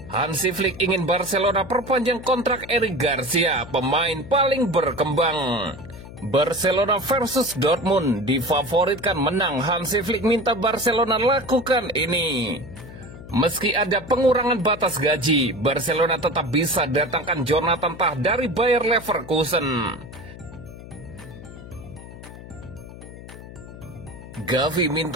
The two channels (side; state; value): left; noise; hum, 15 dB below the sound